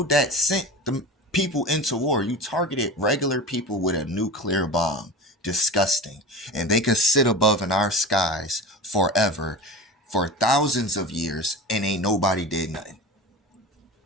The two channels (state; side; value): normal; both; correlation 0.31